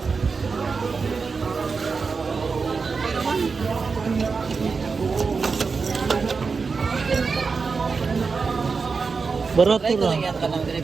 Barato Try ko ra. lang yan kanang diri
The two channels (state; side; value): quieter; left; 4.9 dB